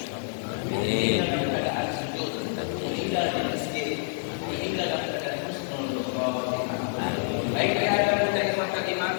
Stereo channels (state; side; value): silent; right; digital silence